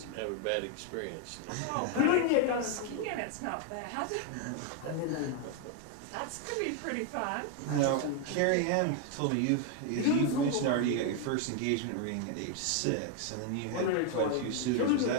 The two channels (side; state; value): both; different; correlation 0.01